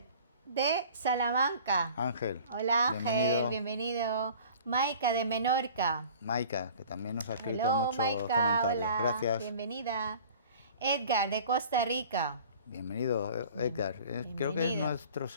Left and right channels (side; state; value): both; inverted; correlation -0.46